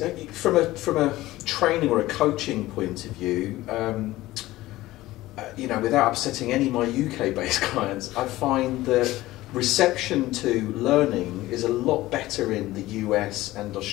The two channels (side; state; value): right; quieter; 17.1 dB